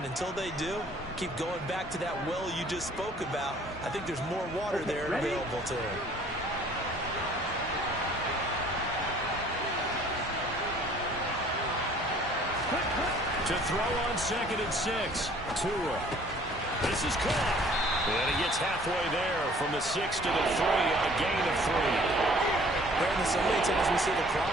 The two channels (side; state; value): both; normal; correlation 0.54